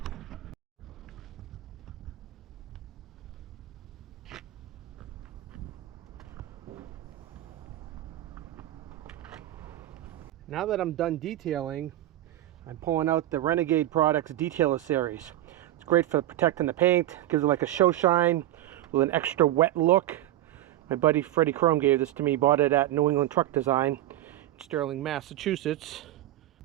Now that I'm done detailing, I'm pulling out the Renegade Products Detailer Series. It's great for protecting the paint, gives it like a show shine with an extra wet look. My buddy Freddie Chrome gave this to me, bought it at New England Truck Design in Sterling, Massachusetts.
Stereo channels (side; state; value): left; quieter; 14.4 dB